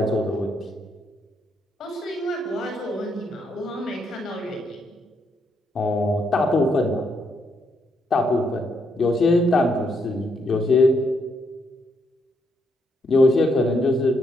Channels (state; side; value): normal; both; correlation 0.76